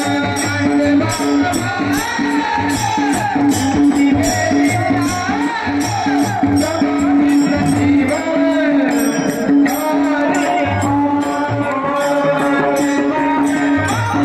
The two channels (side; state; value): both; identical; correlation 1.00